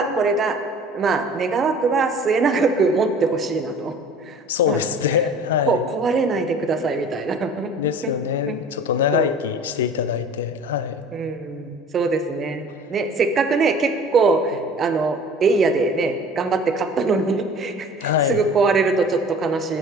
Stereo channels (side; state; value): both; normal; correlation 0.45